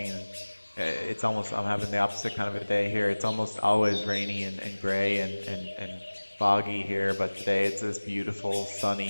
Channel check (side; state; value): both; inverted; correlation -1.00